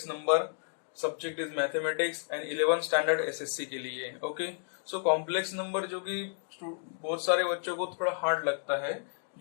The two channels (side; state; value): right; silent; digital silence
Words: number. Subject is mathematics and 11th standard SSC के लिए। ओके, सो कॉम्प्लेक्स नंबर जो कि बहुत सारे बच्चों को थोड़ा हार्ड लगता है,